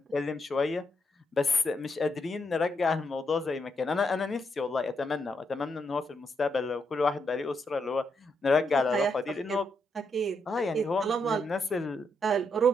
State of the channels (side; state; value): both; normal; correlation 0.79